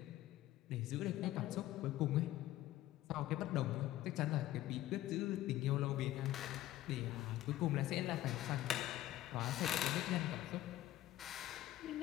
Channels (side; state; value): right; quieter; 14.7 dB